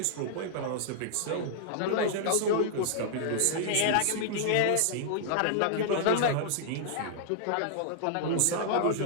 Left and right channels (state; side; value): different; both; correlation -0.01